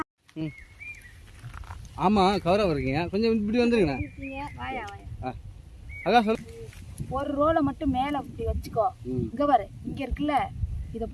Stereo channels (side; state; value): both; identical; correlation 1.00